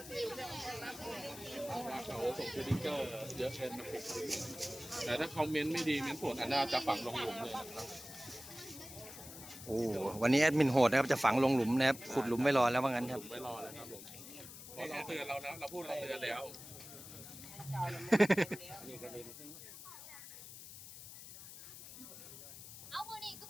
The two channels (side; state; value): left; noise; hiss, 14 dB below the sound